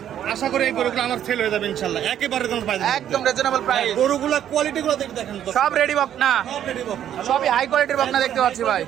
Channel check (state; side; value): quieter; left; 10.5 dB